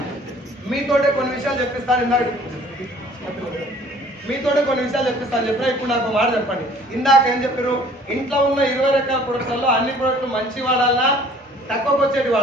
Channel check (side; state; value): both; normal; correlation 0.53